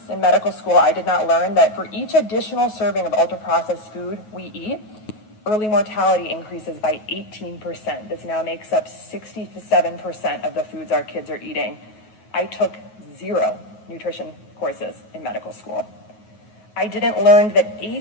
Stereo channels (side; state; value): right; late; 9.3 ms